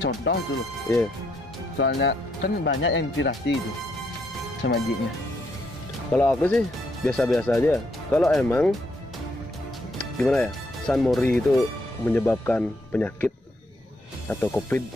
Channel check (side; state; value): both; normal; correlation 0.75